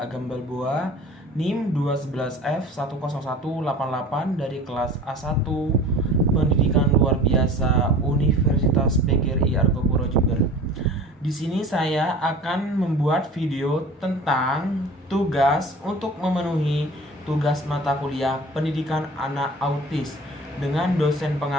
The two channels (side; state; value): both; normal; correlation 0.41